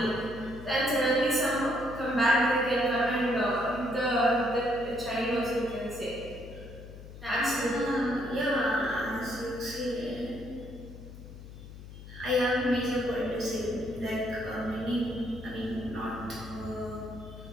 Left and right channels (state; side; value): noise; left; hum, 15 dB below the sound